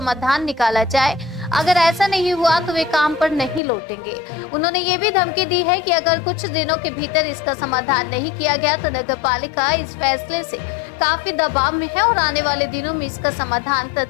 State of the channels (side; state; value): right; drops out; at 3.6 s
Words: निकाला जाए। अगर ऐसा नहीं हुआ तो वे काम पर नहीं लौटेंगे। उन्होंने ये भी धमकी दी है कि अगर कुछ दिनों के भीतर इसका समाधान नहीं किया गया तो नगर पालिका इस फैसले से काफी दबाव में है और आने वाले दिनों में इसका समाधान